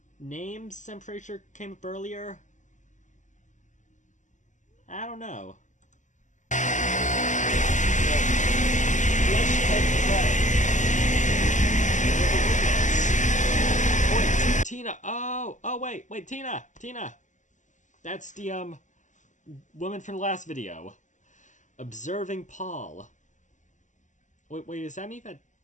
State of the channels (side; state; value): right; late; 0.36 ms